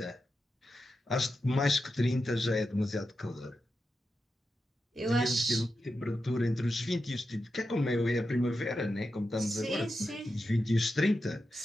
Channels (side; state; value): both; normal; correlation 0.89